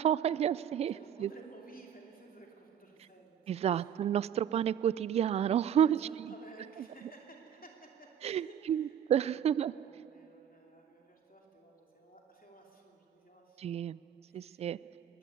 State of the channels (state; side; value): quieter; left; 9.3 dB